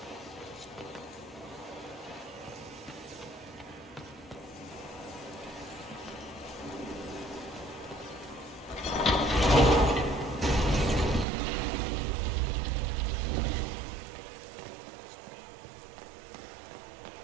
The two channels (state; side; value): drops out; left; at 11.2 s